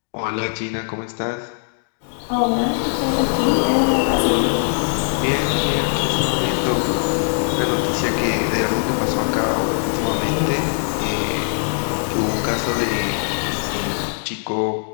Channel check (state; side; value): silent; right; digital silence